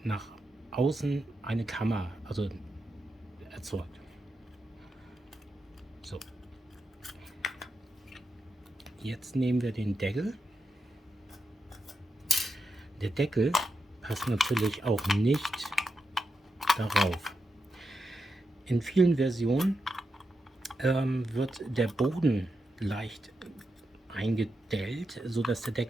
nach außen eine Kammer, also erzeugt. So. Jetzt nehmen wir den Deckel. Der Deckel passt natürlich auch nicht darauf. In vielen Versionen wird der Boden leicht eingedellt, sodass der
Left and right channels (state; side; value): normal; both; correlation 0.87